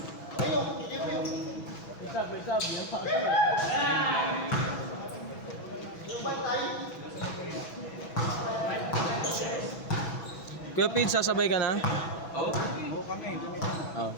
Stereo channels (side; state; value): right; late; 6.1 ms